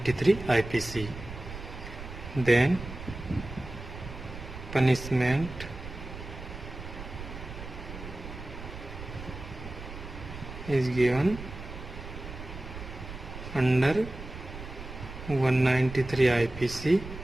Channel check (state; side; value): noise; right; rumble, 11 dB below the sound